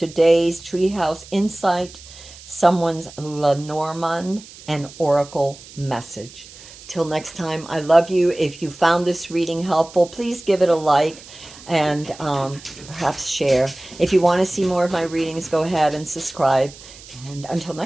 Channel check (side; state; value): right; noise; hiss, 19 dB below the sound